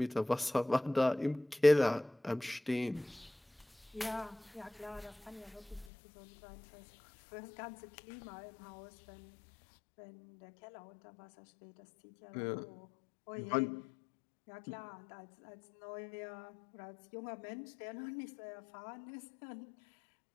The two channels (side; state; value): right; drops out; at 5.9 s